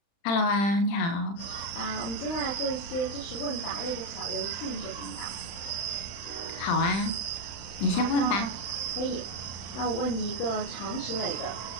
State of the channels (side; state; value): right; late; 35 ms